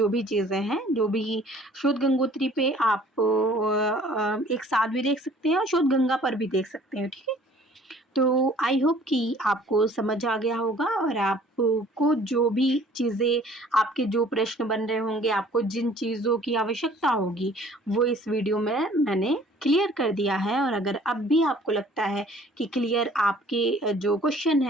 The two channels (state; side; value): normal; both; correlation 0.54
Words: भी चीज़ें हैं। जो भी शोध गंगोत्री पे आप एक साथ भी देख सकते हैं और शोध गंगा पर भी देख सकते हैं। ठीक है, तो आई होप कि आपको समझ आ गया होगा और आपको जो भी चीज़ें, आपके जो प्रश्न बन रहे होंगे, आपको जिन चीज़ों की आवश्यकता होगी वो इस वीडियो में मैंने क्लियर कर दिया है। और अगर अब भी आपको लगता है कि क्लियर आपके जो क्वेश्चन